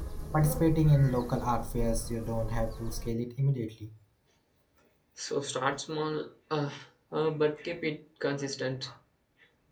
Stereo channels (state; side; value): identical; both; correlation 1.00